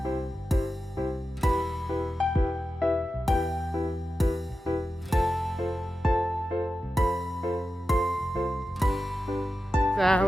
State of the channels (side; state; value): both; normal; correlation 0.92